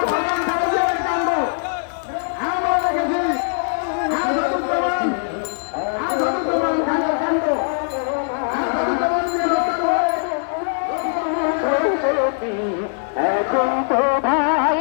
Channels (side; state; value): right; silent; digital silence